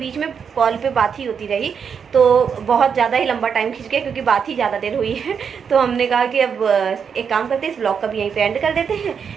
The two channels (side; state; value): left; quieter; 6.8 dB